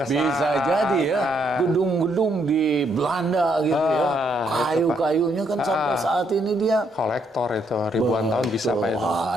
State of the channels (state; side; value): normal; both; correlation 0.73